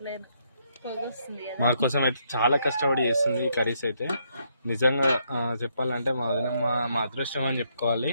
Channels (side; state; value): both; inverted; correlation -0.74